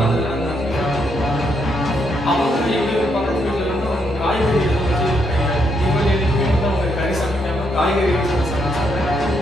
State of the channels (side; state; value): both; normal; correlation 0.76